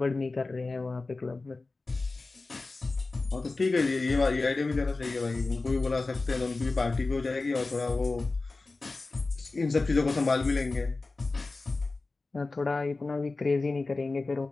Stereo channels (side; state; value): right; quieter; 3.5 dB